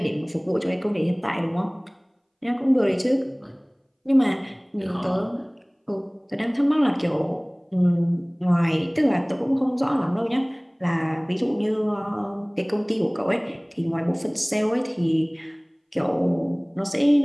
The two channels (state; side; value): identical; both; correlation 1.00